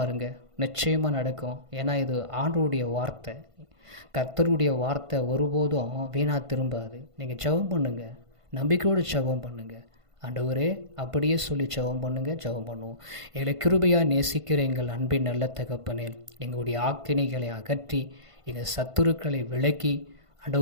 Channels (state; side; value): late; left; 1.5 ms